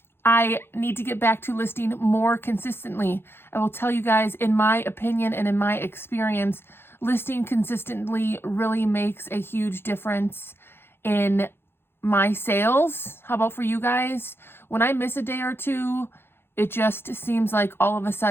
I need to get back to listing more consistently. I will tell you guys, in my opinion and in my experience, listing consistently really makes a huge difference in my sales. How about for you guys? When I miss a day or two, it just seems like all of a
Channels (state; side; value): late; right; 0.11 ms